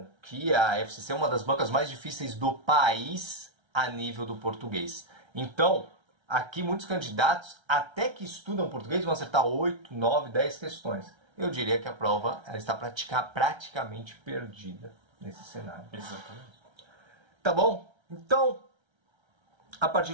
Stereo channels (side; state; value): left; late; 1.3 ms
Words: que a FCC é uma das bancas mais difíceis do país a nível do português. Então, aqui muitos candidatos, até que estudam português, vão acertar 8, 9, 10 questões. Eu diria que a prova ela está praticamente perdida nesse cenário. Exatamente. Tá bom? Então, a partir